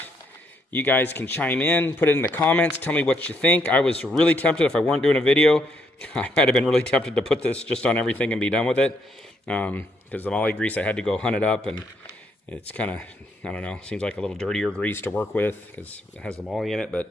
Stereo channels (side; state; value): both; normal; correlation 0.74